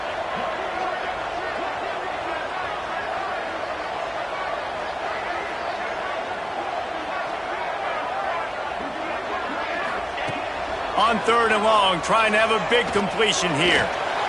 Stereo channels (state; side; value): identical; both; correlation 1.00